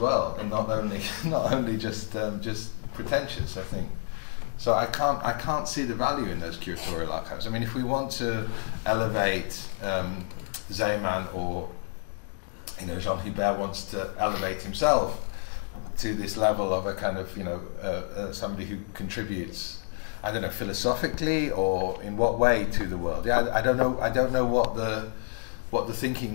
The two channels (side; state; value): right; silent; 59 dB below the other